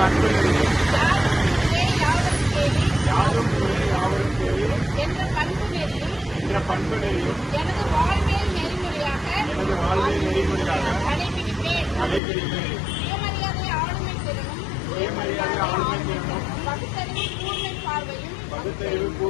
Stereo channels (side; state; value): right; drops out; at 12.2 s